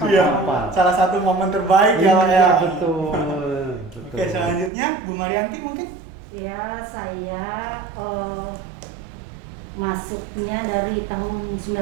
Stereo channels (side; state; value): left; drops out; at 4.7 s